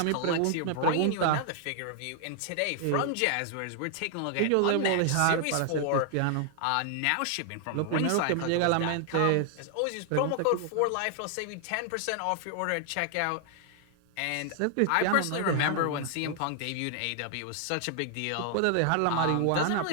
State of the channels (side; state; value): both; different; correlation 0.00